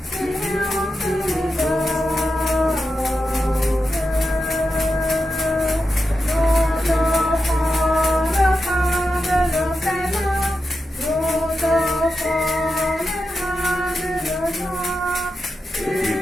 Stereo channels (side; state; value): both; normal; correlation 0.89